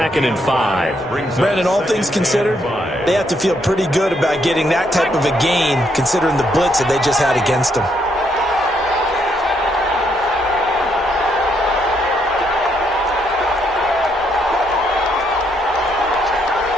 and 5. Brandon, all things considered, they have to feel pretty good about getting that type of a gain considering the blitz that they just had against them.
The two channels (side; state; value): both; normal; correlation 0.74